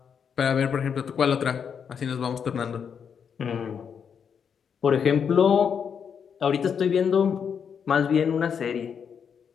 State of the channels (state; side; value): quieter; right; 7.1 dB